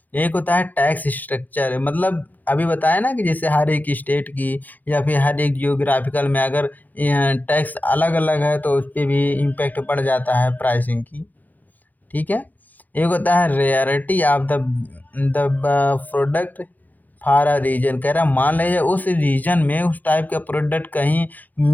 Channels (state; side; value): late; right; 0.083 ms